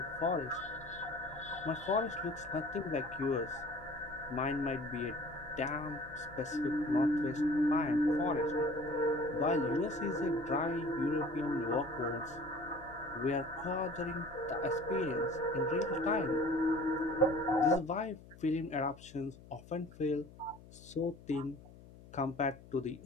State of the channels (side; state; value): left; noise; hum, 20 dB below the sound